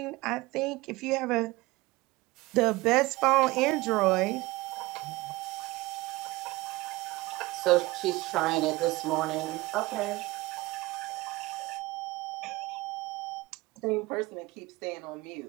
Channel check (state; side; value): quieter; left; 20.9 dB